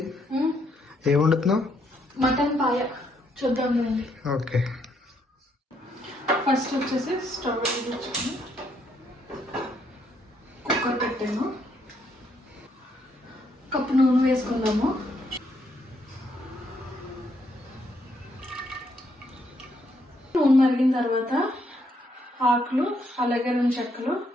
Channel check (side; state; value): both; normal; correlation 0.73